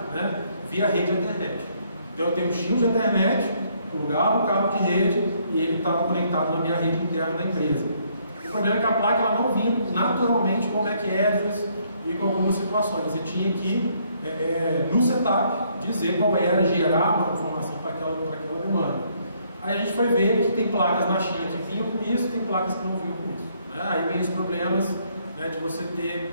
né, via rede internet. Então eu tenho um shield de internet, plugava o cabo de rede e ele estava conectado na minha rede interna da empresa. O problema é que a placa ela não vinha naturalmente com back address e com algumas situações. Você tinha que, no setup, dizer qual era, gerar uma informação para aquela demanda. Aí a gente foi ver que tem placas na China que vinham com isso e tem placas que não vinham com isso. Né? Aí vem os problemas, né, de você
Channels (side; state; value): both; inverted; correlation -0.69